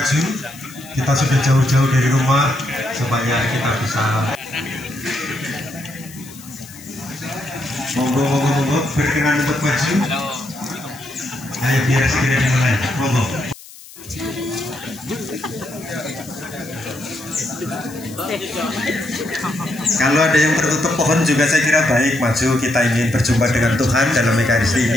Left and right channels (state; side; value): noise; left; hiss, 19 dB below the sound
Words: Kita sudah jauh-jauh dari rumah supaya kita bisa. Monggo, berkenan untuk maju. Ayo biar segera dimulai. Monggo. Kalau ada yang tertutup pohon juga saya kira baik, maju, kita ingin berjumpa dengan Tuhan dalam Ekaristi